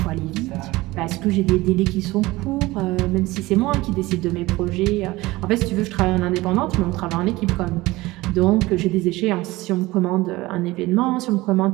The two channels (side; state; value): left; quieter; 19.7 dB